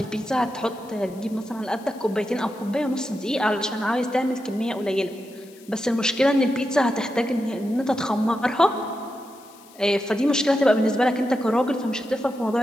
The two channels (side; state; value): left; noise; hiss, 25 dB below the sound